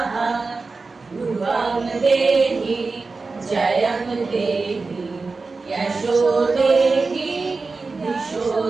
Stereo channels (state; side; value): quieter; left; 4.0 dB